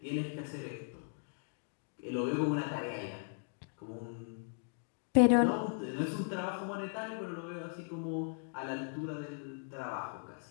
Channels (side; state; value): right; silent; 53 dB below the other